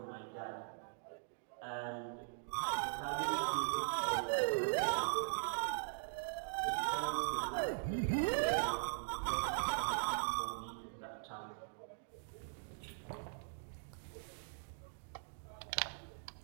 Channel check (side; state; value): left; silent; digital silence